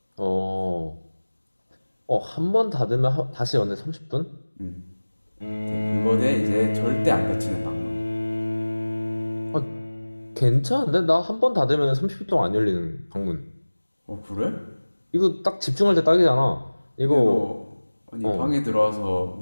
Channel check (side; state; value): both; inverted; correlation -1.00